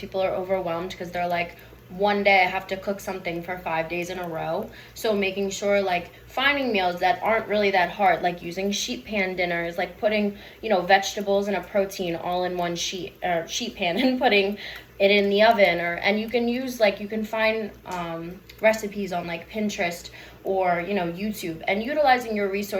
are overwhelmed because they're like, one day I have to cook something for 5 days in a row. So making sure like finding meals that aren't really that hard, like using sheet pan dinners, like putting, vegetables and a protein all in one sheet pan and putting it in the oven, and you can find recipes on like Pinterest or YouTube, and utilizing your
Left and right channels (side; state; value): both; identical; correlation 1.00